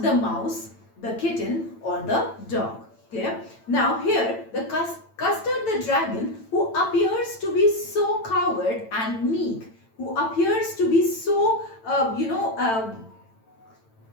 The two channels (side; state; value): right; late; 9.0 ms